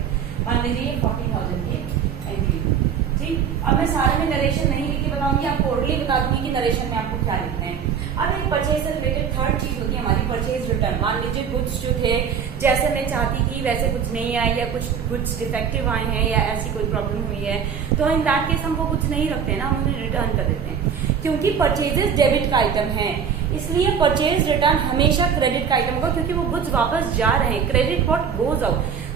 मान लीजिए 40,000 की एंट्री, ठीक। अब मैं सारे में नरेशन नहीं लिख के बताऊंगी, आपको ओरली बता दूंगी कि नरेशन में आपको क्या लिखना है। अब एक परचेज से रिलेटेड थर्ड चीज होती है हमारी परचेज रिटर्न, मान लीजिए गुड्स जो थे जैसे मैं चाहती थी वैसे कुछ नहीं आए या कुछ गुड्स डिफेक्टिव आए हैं या ऐसी कोई प्रॉब्लम हुई है, तो इन दैट केस हम वो कुछ नहीं रखते ना, हम उन्हें रिटर्न कर देते हैं। क्योंकि परचेजेस डेबिट का आइटम है, इसलिए परचेज रिटर्न हमेशा क्रेडिट का आइटम होगा, क्योंकि वो गुड्स वापस जा रहे हैं। Credit what goes out,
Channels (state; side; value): quieter; left; 7.2 dB